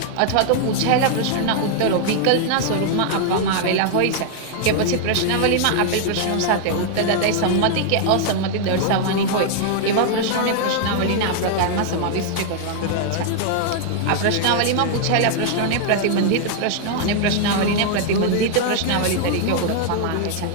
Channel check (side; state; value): both; different; correlation 0.00